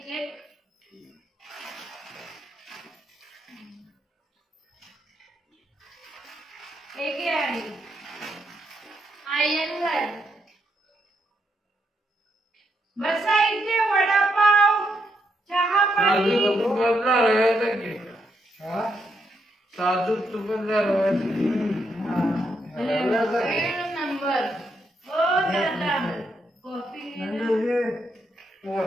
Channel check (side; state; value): both; normal; correlation 0.79